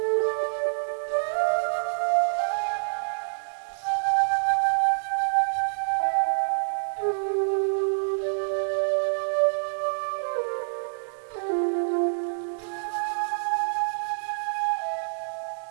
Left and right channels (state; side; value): silent; left; digital silence